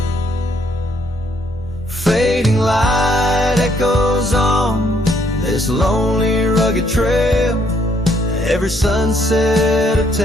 Fading light echoes on this lonely, rugged trail. Every sunset a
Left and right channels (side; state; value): both; normal; correlation 0.69